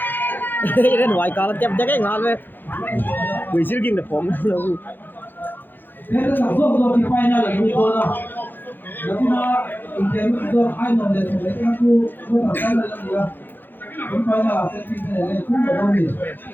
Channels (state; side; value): late; right; 0.092 ms